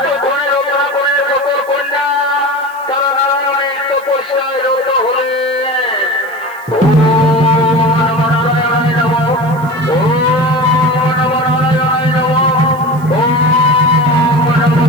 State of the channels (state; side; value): noise; right; hiss, 25 dB below the sound